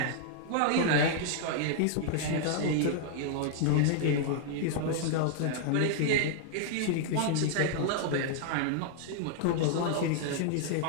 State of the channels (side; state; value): both; different; correlation -0.01